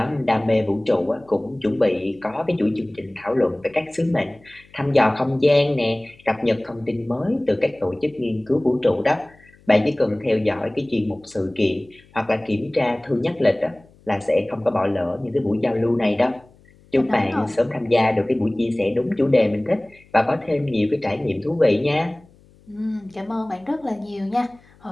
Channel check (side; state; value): left; noise; hum, 28 dB below the sound